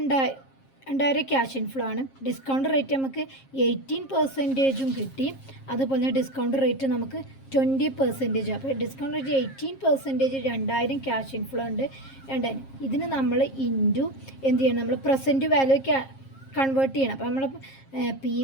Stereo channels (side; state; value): right; late; 7.5 ms